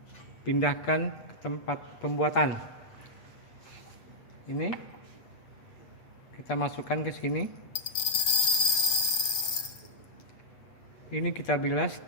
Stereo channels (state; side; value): late; right; 8.4 ms